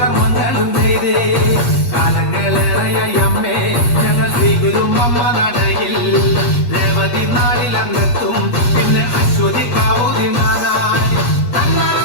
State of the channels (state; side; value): late; right; 8.4 ms